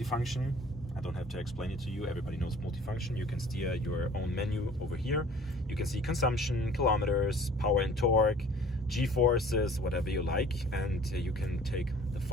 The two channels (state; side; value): normal; both; correlation 0.50